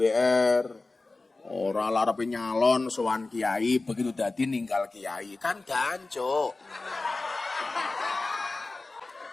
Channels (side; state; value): right; quieter; 3.4 dB